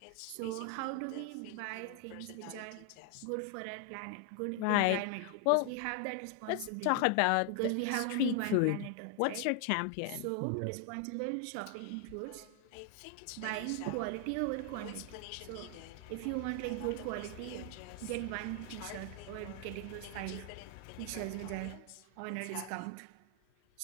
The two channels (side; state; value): both; different; correlation 0.00